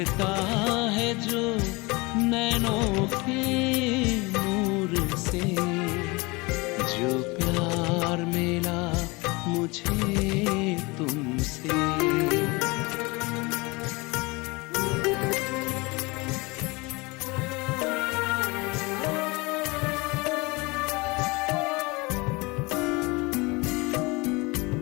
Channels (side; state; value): right; quieter; 25.4 dB